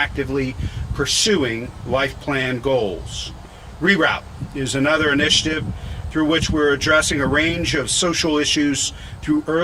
pursuing life plan goals. Reroute is another initiative through which we're addressing a range of social issues through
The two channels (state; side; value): identical; both; correlation 1.00